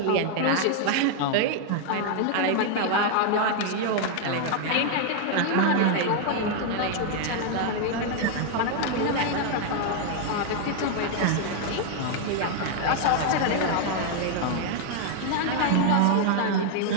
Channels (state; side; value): different; both; correlation 0.00